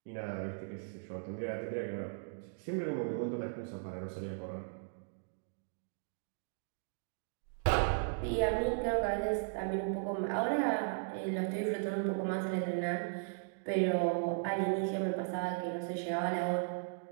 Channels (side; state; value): left; silent; digital silence